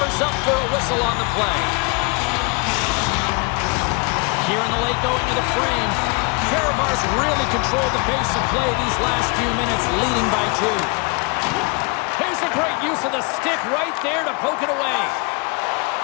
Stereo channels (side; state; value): right; quieter; 31.5 dB